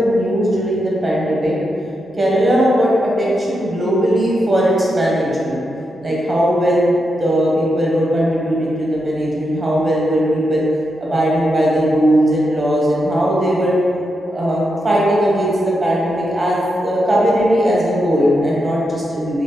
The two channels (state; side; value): normal; both; correlation 0.85